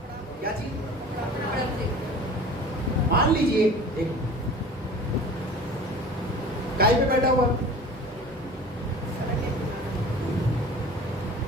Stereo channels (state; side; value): normal; both; correlation 0.41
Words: क्या चीज, कपड़ा फेंक। मान लीजिए एक गाय पे बैठा हुआ,